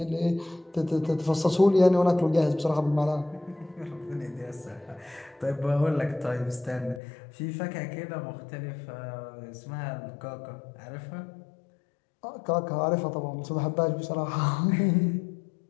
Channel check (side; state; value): right; drops out; at 7.0 s